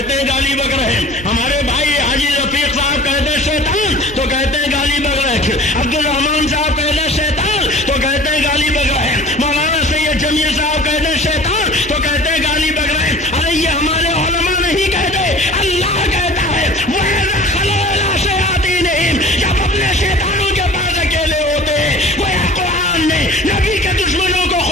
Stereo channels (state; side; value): normal; both; correlation 0.44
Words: ہیں گالی بک رہے۔ ہمارے بھائی حاجی رفیق صاحب کہہ دے شیطان تو کہتے ہیں گالی بک رہے۔ عبد الرحمان صاحب کہہ دے شیطان تو کہتے ہیں گالی بک رہے۔ مولانا سید جمیل صاحب کہہ دے شیطان تو کہتے ہیں گالی بک رہے۔ ارے یہ ہمارے علماء نہیں کہتے، اللہ کہتا ہے وَإِذَا خَلَوْا إِلَىٰ شَيَاطِینِهِمْ، جب اپنے شیطانوں کے پاس اکیلے ہوتے ہیں۔ گویا قرآن نے نبی کے دشمنوں کو